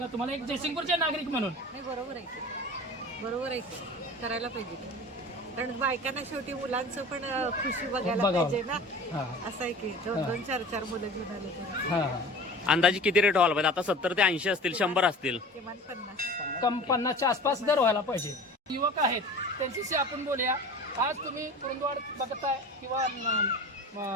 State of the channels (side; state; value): both; normal; correlation 0.38